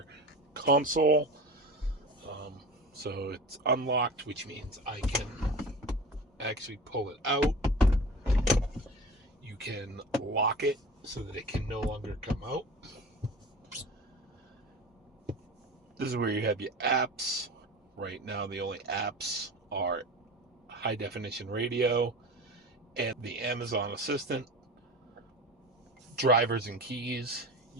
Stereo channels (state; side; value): normal; both; correlation 0.33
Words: console. So it's unlocked, which means I can actually pull it out. You can lock it so that it can no longer come out. This is where you have your apps. Right now, the only apps are high definition radio and the Amazon Assistant. Drivers and keys.